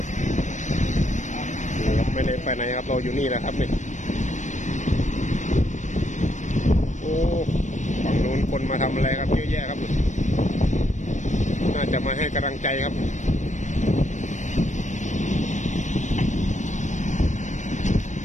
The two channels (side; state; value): right; late; 0.35 ms